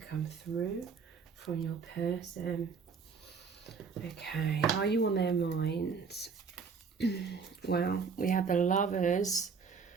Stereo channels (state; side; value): quieter; left; 5.5 dB